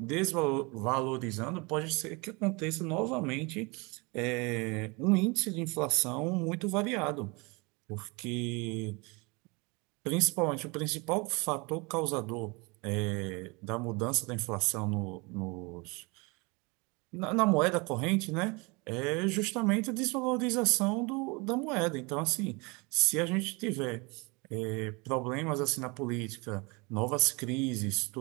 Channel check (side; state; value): left; quieter; 28.0 dB